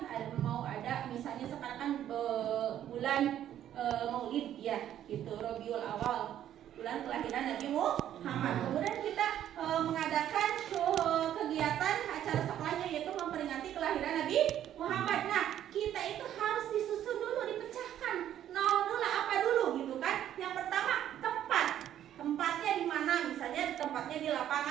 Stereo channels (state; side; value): quieter; left; 11.1 dB